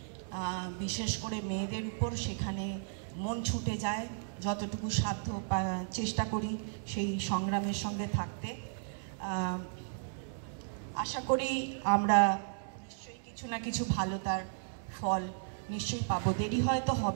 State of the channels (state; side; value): silent; left; digital silence